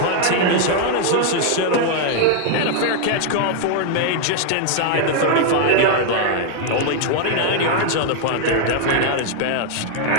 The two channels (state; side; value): different; both; correlation 0.00